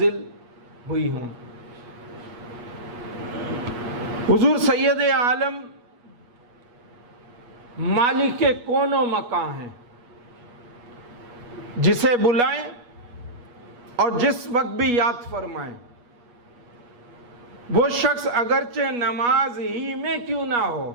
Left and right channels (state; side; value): late; left; 8.3 ms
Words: ہوئی ہوں۔ حضور سید عالم مالک کون و مکان ہیں، جسے بلائیں اور جس وقت بھی یاد فرمائیں، وہ شخص اگرچہ نماز ہی میں کیوں نہ ہو،